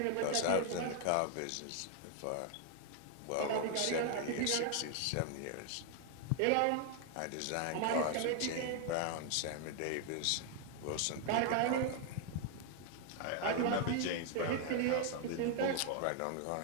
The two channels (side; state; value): both; different; correlation 0.00